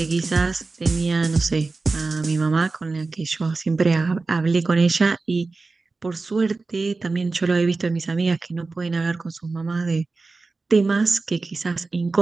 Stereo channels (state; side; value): quieter; left; 3.8 dB